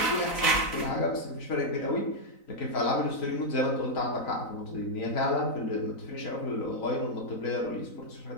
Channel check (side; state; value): right; late; 3.9 ms